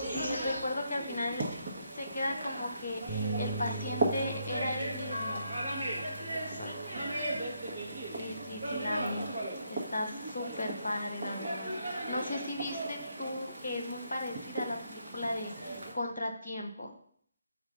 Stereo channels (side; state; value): both; inverted; correlation -0.76